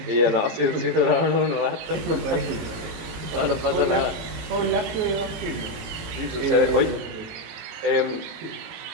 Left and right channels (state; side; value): late; left; 18 ms